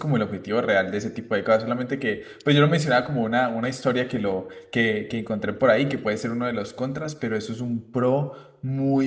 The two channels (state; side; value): identical; both; correlation 1.00